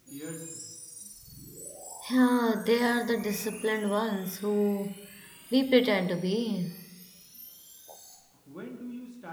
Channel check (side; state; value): both; identical; correlation 1.00